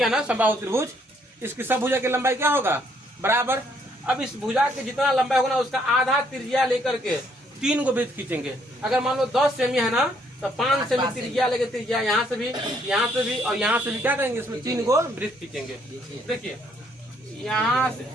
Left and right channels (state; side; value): normal; both; correlation 0.68